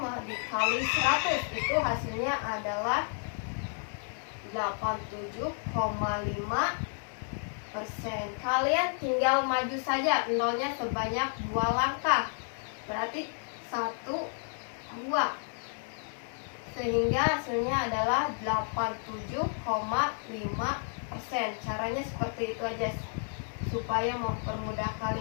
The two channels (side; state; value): right; silent; 57 dB below the other